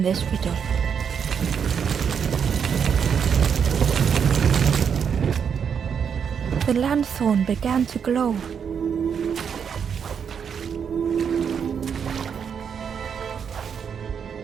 this riddle. The lanthorn began to glow.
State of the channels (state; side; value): quieter; left; 7.2 dB